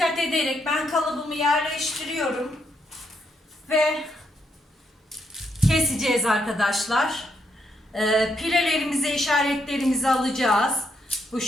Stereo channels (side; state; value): both; normal; correlation 0.77